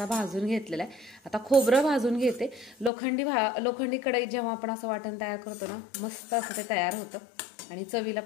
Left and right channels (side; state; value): right; drops out; at 2.9 s